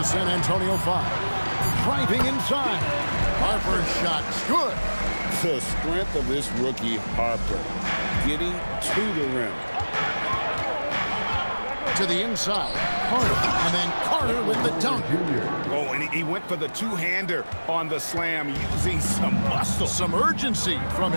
San Antonio 5. Driving inside. Harper's shot's good. The strength of this rookie, Harper, getting to the rim. To the inside, Carter, and then Carter with the dunk. Oh, and he went for the two-hander on the slam, using some muscle. Some urgency from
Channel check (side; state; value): both; inverted; correlation -1.00